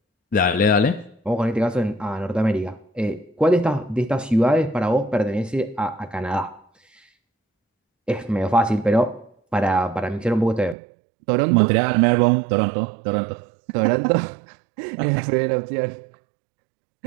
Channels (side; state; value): left; drops out; at 10.8 s